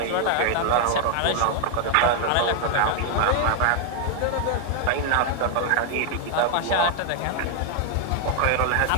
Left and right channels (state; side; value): different; both; correlation 0.00